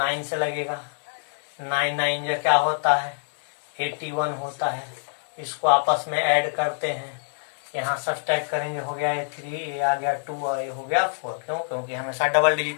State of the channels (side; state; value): right; silent; digital silence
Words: से लगेगा। 9 9 जो क्या होता है 81 होता है। इसको आपस में ऐड करते हैं, यहाँ सब्सट्रैक्ट करेंगे, हो गया ये 3, ये आ गया 2 और ये हो गया 4। क्यों? क्योंकि हमेशा डबल